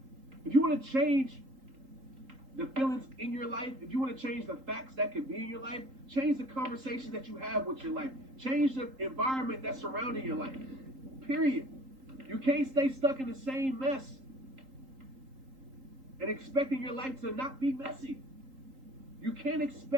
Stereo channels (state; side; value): late; left; 3.8 ms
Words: the feelings in your life, if you want to change the facts that could be in your life, change the conversation that you have with your life. Change the environment that's surrounding your life. Period. You can't stay stuck in the same mess and expecting your life to not be messy. You can't